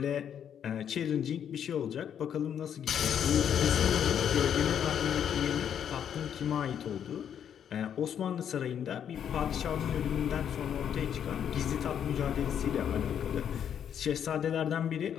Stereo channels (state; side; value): quieter; right; 8.8 dB